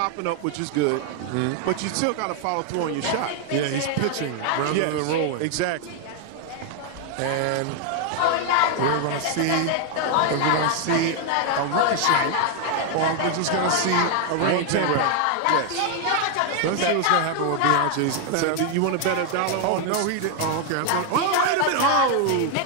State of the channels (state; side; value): different; both; correlation 0.00